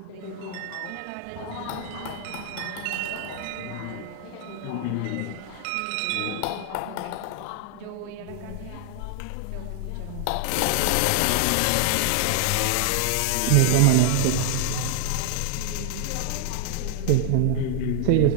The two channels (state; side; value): different; both; correlation 0.00